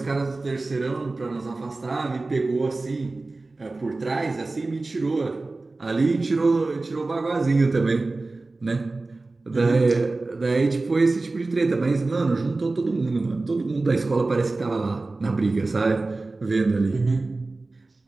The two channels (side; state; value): left; quieter; 3.3 dB